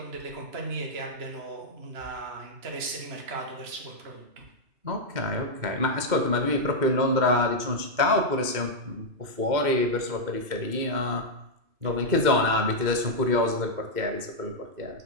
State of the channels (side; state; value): left; late; 2.1 ms